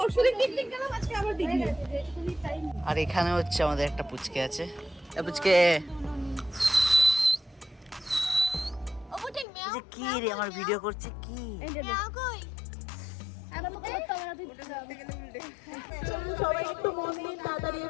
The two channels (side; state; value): right; drops out; at 9.5 s